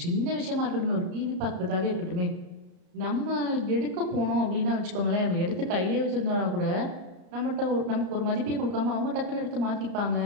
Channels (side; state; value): left; late; 33 ms